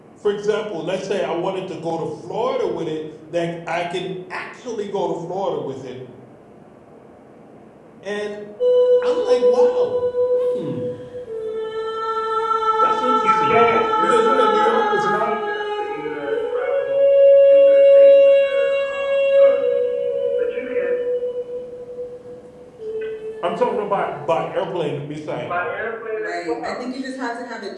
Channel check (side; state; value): both; identical; correlation 1.00